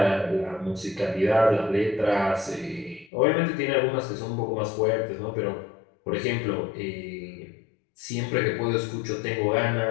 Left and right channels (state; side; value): drops out; right; at 3.1 s